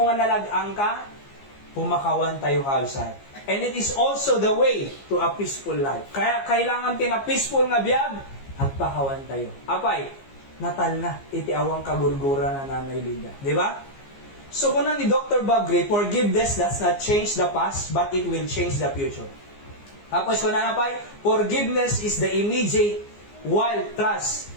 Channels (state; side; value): late; right; 15 ms